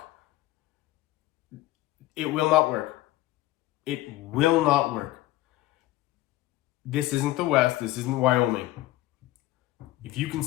It will not work. It will not work. This isn't the West. This isn't Wyoming. If you can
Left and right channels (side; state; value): right; quieter; 16.4 dB